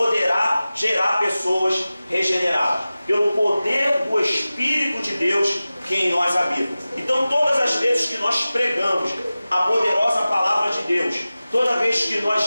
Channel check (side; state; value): both; inverted; correlation -0.96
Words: gerar pessoas regeneradas, pelo poder do Espírito de Deus que em nós habita. Então todas as vezes que nós pregamos a poderosa palavra de Deus, toda vez que